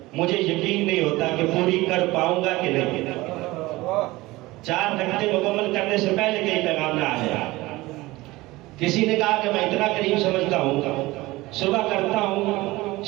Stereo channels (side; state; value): left; quieter; 19.8 dB